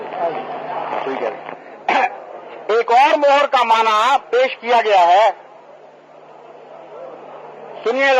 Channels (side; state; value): both; identical; correlation 1.00